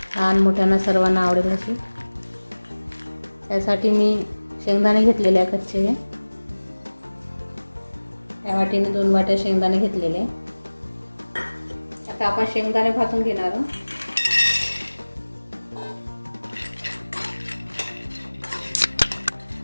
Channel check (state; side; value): inverted; both; correlation -1.00